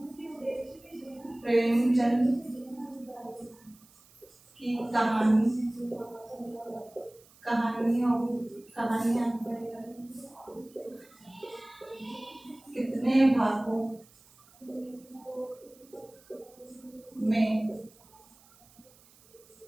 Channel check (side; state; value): right; noise; hiss, 27 dB below the sound